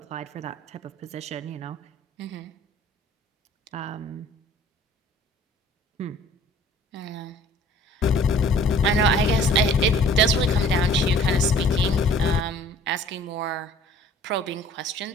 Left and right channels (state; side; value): normal; both; correlation 0.52